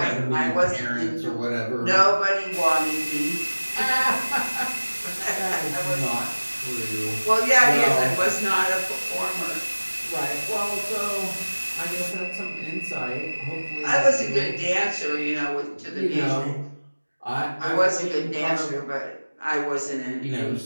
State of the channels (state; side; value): inverted; both; correlation -1.00